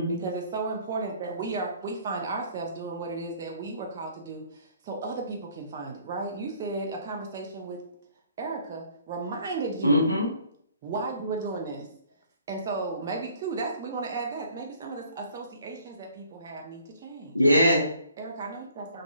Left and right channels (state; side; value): inverted; both; correlation -0.57